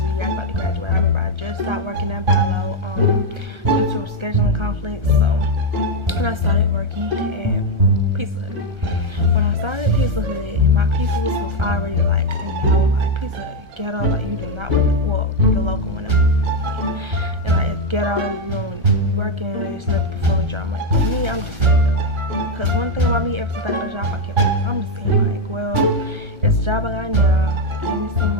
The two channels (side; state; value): left; late; 1.3 ms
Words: the year I was about to graduate. I remember I just stopped working at Bilo due to scheduling conflicts. So, and I started working at Pizza Hut. When I started at Pizza Hut, my people was already like, like Pizza Hut ghetto, like you do not want to, well, the local one, and like it's ghetto, you don't be working, there's nothing before the job. Like for me, I'm just saying, like, because one thing about me, ever since I got a job, I kept working. I'm just saying, like, well, it's a job I got now. Give me some